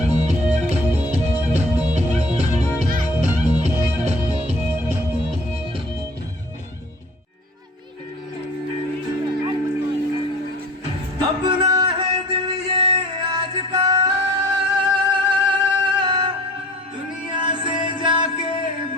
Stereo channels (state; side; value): normal; both; correlation 0.46